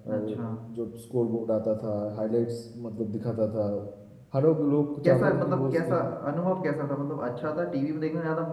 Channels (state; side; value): identical; both; correlation 1.00